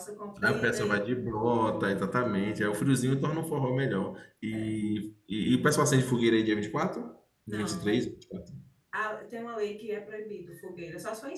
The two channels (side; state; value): both; identical; correlation 1.00